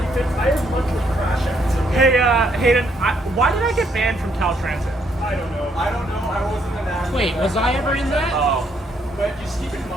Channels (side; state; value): both; normal; correlation 0.72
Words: crash outs. Hey, Hayden, why did I get banned from Cal Transit? I don't know. I don't know. I wasn't an admin. Wait, was I ever in that? Oh. But just keep in